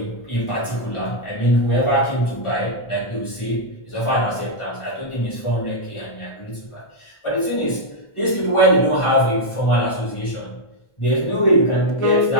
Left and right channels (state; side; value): late; right; 1.4 ms